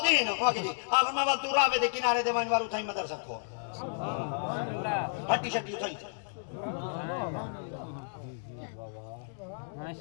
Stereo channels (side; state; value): right; silent; digital silence